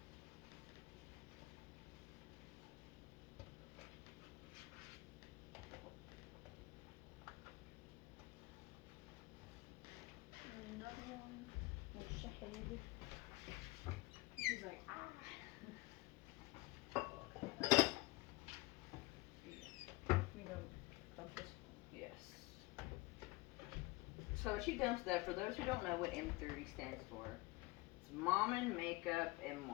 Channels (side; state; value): right; quieter; 21.3 dB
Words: She's like, ah. We don't dump this. Yes. So she dumps that. For those who don't know what M30 stands for, it's Mom and Makeup and